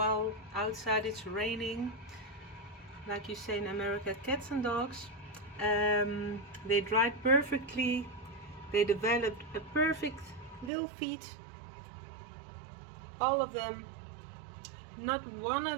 outside it's raining, like you say in America, cats and dogs. They dried perfectly. They developed a perfect little feet. All of them. Not one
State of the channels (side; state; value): left; drops out; at 10.7 s